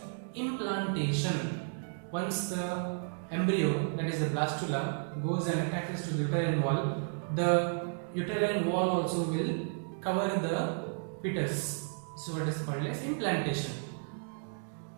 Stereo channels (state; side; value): silent; left; digital silence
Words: implantation. Once the embryo, that is the blastula, goes and attaches to the uterine wall, the uterine wall also will cover the fetus. So what is called as implantation.